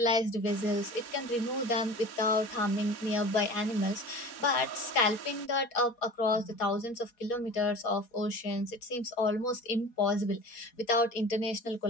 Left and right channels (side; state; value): right; late; 4.2 ms